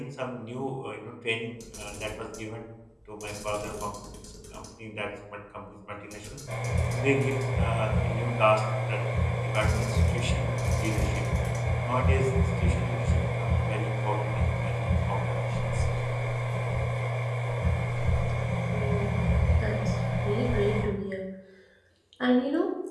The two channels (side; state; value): both; identical; correlation 1.00